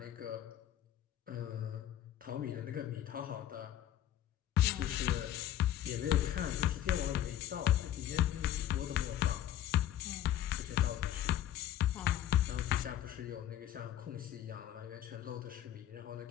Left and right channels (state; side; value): quieter; right; 11.8 dB